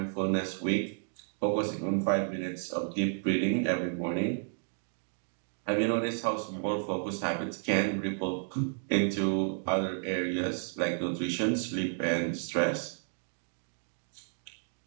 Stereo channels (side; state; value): left; silent; 56 dB below the other